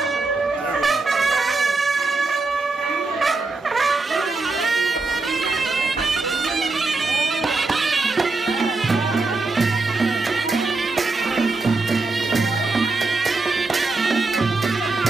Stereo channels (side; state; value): left; quieter; 3.7 dB